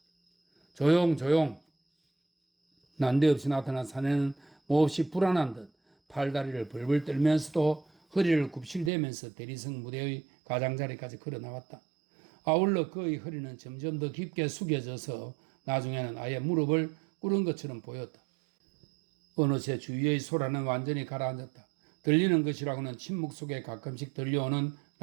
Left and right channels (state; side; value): drops out; left; at 8.9 s